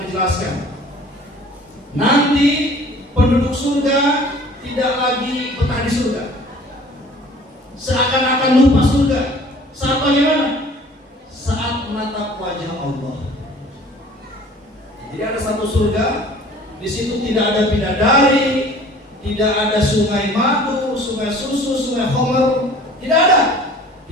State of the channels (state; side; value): normal; both; correlation 0.49